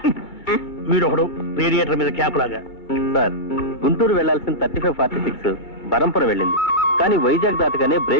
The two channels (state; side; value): late; right; 2.2 ms